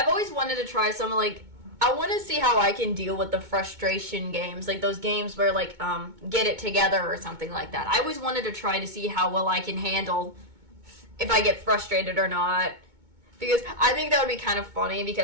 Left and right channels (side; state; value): left; late; 2.2 ms